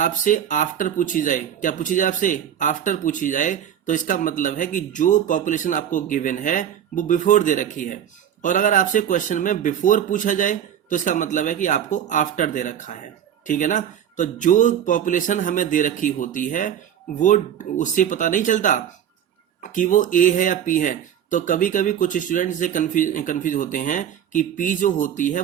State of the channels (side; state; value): left; quieter; 9.6 dB